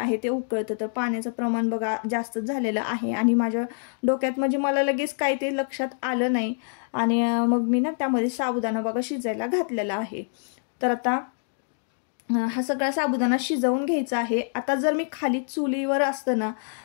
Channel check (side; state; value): right; silent; digital silence